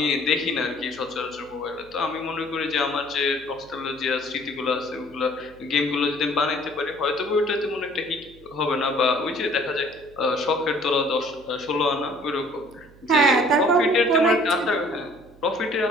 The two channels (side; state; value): right; noise; hum, 25 dB below the sound